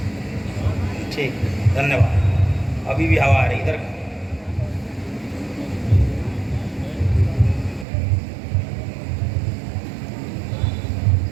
ठीक, धन्यवाद। अभी भी हवा आ रही इधर।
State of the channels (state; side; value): drops out; left; at 7.9 s